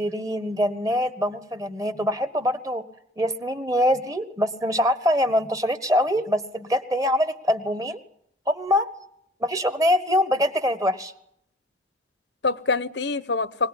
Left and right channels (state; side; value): normal; both; correlation 0.53